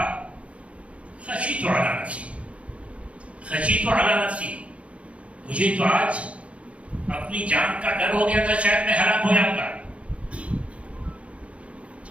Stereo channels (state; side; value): late; left; 0.062 ms